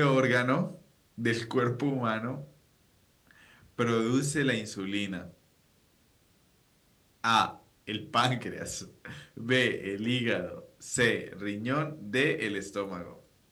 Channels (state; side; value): identical; both; correlation 1.00